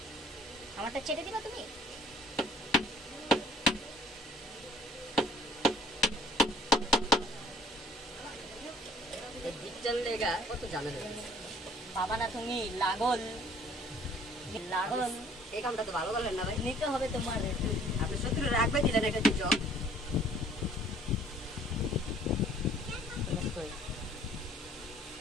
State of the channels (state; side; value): normal; both; correlation 0.55